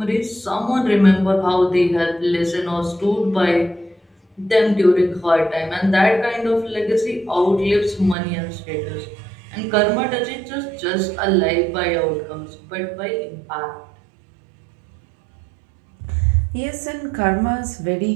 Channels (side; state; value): left; drops out; at 8.2 s